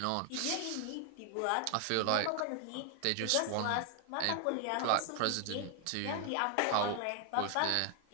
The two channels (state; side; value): different; both; correlation 0.01